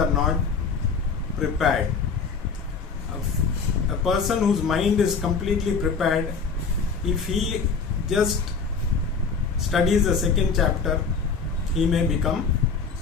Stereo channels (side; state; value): right; quieter; 5.2 dB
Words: not prepared. A person whose mind is completely prepared, if he just studies the second chapter, he may become